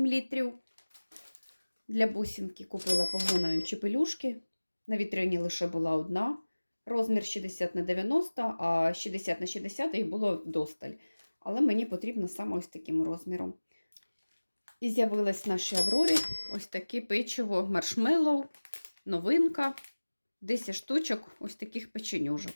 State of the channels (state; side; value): inverted; both; correlation -1.00